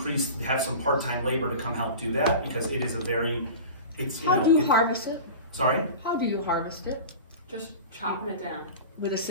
have some part-time labor to come help do that, because it is How do you harvest it? Sorry? How do you harvest it? Just chopping it down. With a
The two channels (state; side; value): inverted; both; correlation -0.34